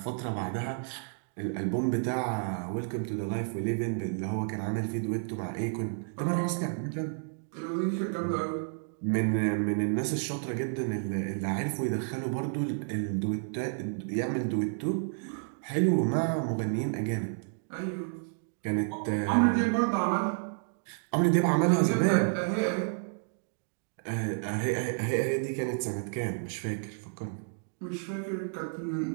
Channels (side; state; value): left; silent; digital silence